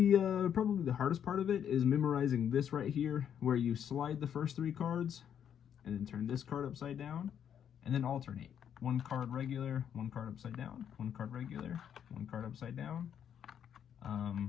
probably the hardest part of it is memorizing this right here, where you slide the first 3 cards and then turn this card upside down and then alternate. 1 card regular, 1 card upside down, 1 card regular, 1 card upside down.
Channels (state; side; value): quieter; right; 8.8 dB